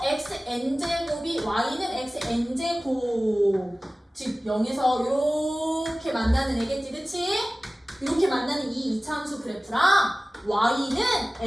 xn제곱이 y는 xn제곱, 즉 0에서 이렇게 만나는 애겠지, 그치? 이렇게 만나는 이 2차 함수 그래프랑 y는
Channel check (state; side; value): normal; both; correlation 0.97